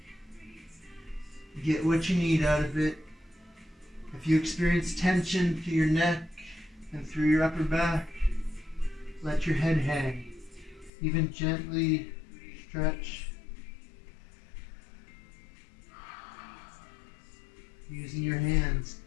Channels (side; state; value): right; drops out; at 10.9 s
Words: Get what you need out of it. If you experience tension through your neck and through your upper back, let your head hang. Even gently stretch. Using your hands.